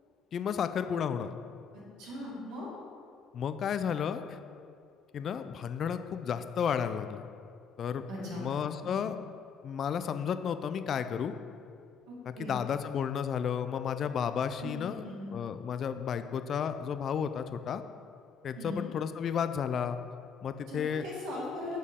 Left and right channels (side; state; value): right; quieter; 6.8 dB